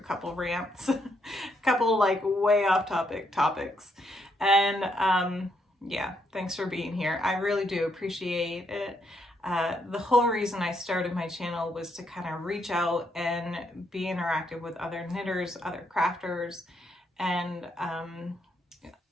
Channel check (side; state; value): both; normal; correlation 0.76